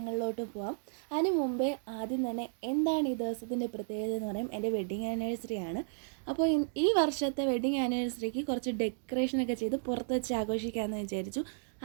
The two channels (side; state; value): left; silent; digital silence